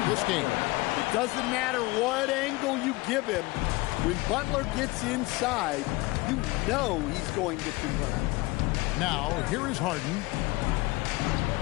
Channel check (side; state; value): right; quieter; 22.3 dB